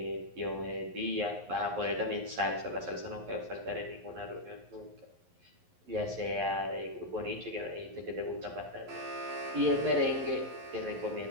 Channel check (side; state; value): left; late; 11 ms